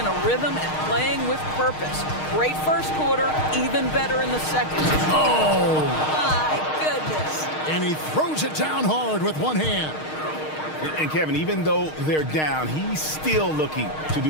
a rhythm and playing with purpose. Great first quarter, even better in the second. Oh! My goodness. And he throws it down hard with one hand. And Kevin, even though they're down, he's still looking to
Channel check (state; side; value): late; right; 6.5 ms